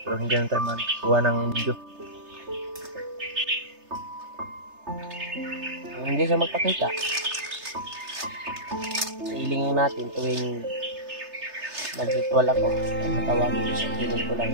pero hindi na tayo magkuha ng video. Hindi siya magpakita. Hilingin natin tuwing nag-ritual ako. Tawagin ko siya. Hiling ko lang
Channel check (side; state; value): left; late; 3.3 ms